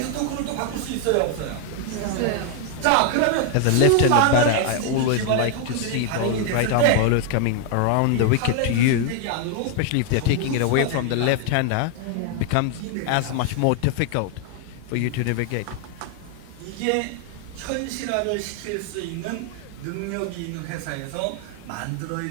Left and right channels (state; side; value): different; both; correlation 0.00